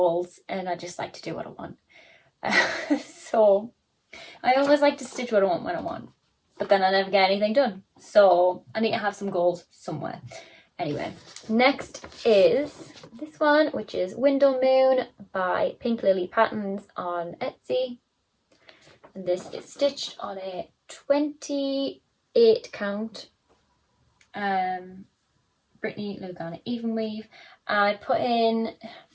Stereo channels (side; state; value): both; identical; correlation 1.00